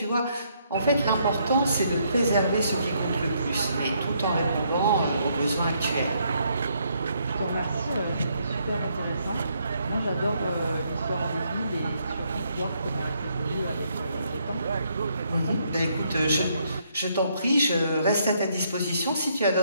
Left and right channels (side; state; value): both; inverted; correlation -0.72